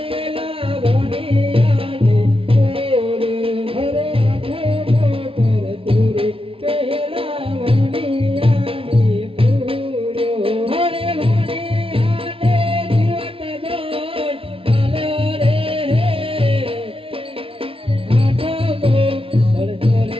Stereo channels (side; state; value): left; late; 0.26 ms